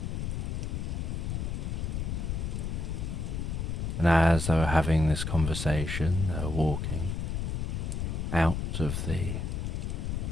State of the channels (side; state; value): left; noise; rumble, 1 dB below the sound